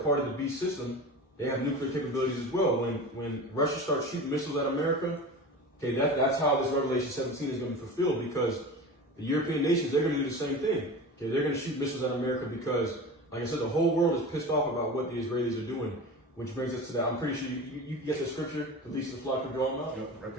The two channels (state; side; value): normal; both; correlation 0.32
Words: of the beast system, they have nuclear capabilities as well. When Russia starts shooting missiles at America, okay, that's how this Revelation 17 is going to be fulfilled, because the European nations, they're going to do the same thing. Okay, they're going to shoot missiles at America because, like I said, the whole world is pissed off about what the Israelis are doing, which brings us to that. I'm pretty sure you get the scripture, the least of the flock will draw them out. Yep, right